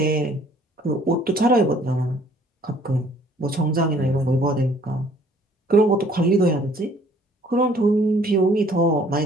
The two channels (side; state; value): both; normal; correlation 0.58